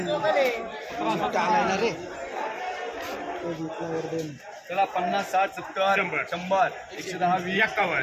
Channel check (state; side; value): identical; both; correlation 1.00